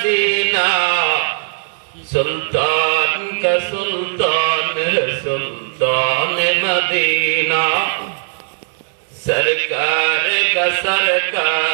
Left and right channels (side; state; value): left; silent; digital silence